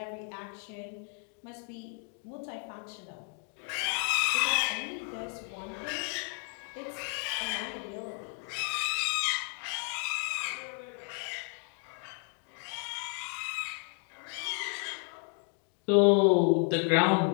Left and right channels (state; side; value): quieter; right; 35.9 dB